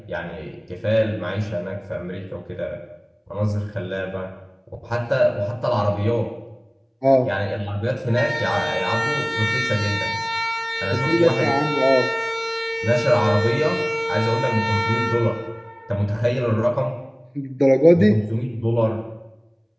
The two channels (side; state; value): both; identical; correlation 1.00